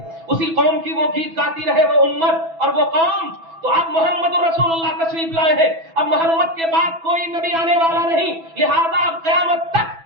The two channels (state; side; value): late; left; 6.1 ms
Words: उसी कौम की वो गीत गाती रहे वो उम्मत और वो कौम। तो अब मोहम्मद रसूलुल्लाह तशरीफ लाए हैं, अब मोहम्मद के बाद कोई नबी आने वाला नहीं, लिहाजा अब क़यामत